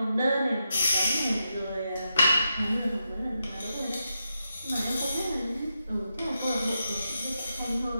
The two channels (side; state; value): both; inverted; correlation -0.86